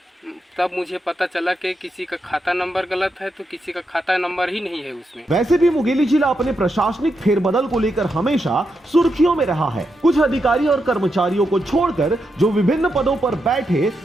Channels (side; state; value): both; normal; correlation 0.84